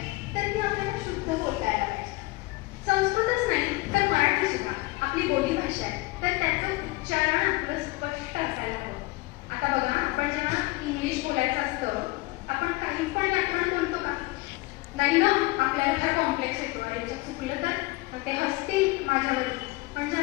तर ती आपल्याला शुद्ध बोलता यायला पाहिजे. संस्कृतच नाही तर मराठी सुद्धा आपली बोली भाषा आहे, तर त्याचं उच्चारण आपलं स्पष्ट असायला हवं. आता बघा, आपण जेव्हा इंग्लिश बोलायचं असतं, आपण काही पण व्याकरण बोलतो का? नाही ना, आपल्याला फार कॉम्प्लेक्स येतो. याच्यात चुकलं तर ते हसतील माझ्यावरती. म्हणजे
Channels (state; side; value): quieter; right; 22.0 dB